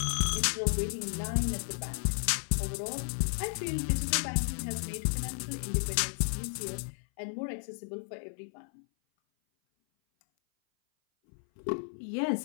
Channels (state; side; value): silent; right; 56 dB below the other